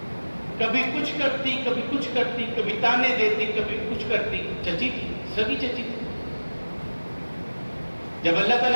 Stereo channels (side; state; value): both; inverted; correlation -1.00